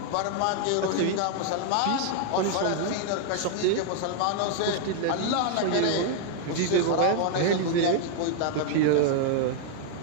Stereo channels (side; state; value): both; different; correlation 0.00